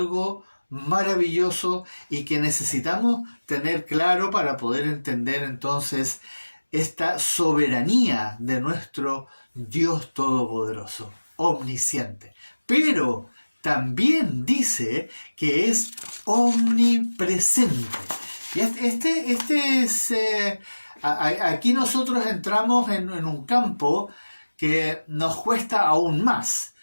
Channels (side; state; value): both; inverted; correlation -1.00